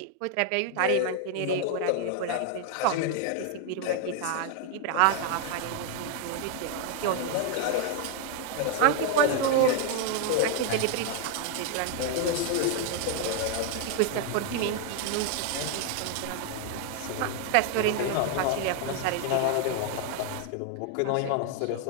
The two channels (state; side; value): different; both; correlation 0.00